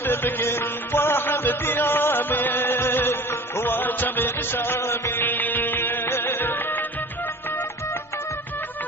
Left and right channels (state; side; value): normal; both; correlation 0.41